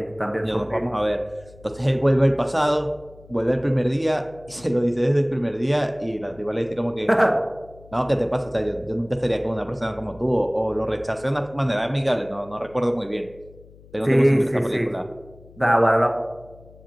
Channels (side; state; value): left; noise; hum, 23 dB below the sound